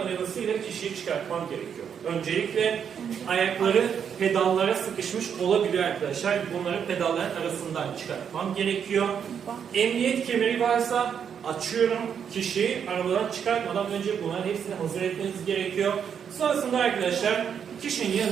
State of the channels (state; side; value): quieter; left; 7.7 dB